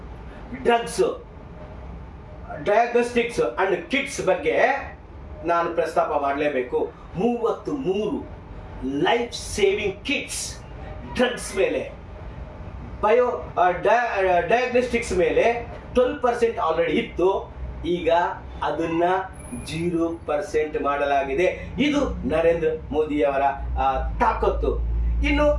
drugs, diagnostics and kits ಬಗ್ಗೆ ನಾನು ಪ್ರಸ್ತಾಪ ಮಾಡಲೇಬೇಕು. 33 ಲೈಫ್ ಸೇವಿಂಗ್ ಕಿಟ್ಸ್ ಡ್ರಗ್ಸ್ ಮೇಲೆ ಡಯಾಗ್ನೋಸ್ಟಿಕ್ಸ್ ಮೇಲೆ 12% ಆಲ್ರೆಡಿ ಇತ್ತು. ಈಗ ಅದನ್ನ 0% ಮಾಡಲಾಗಿದೆ. ಇದು ನರೇಂದ್ರ ಮೋದಿಯವರ ತಾಕತ್ತು. ಇನ್ನು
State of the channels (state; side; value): identical; both; correlation 1.00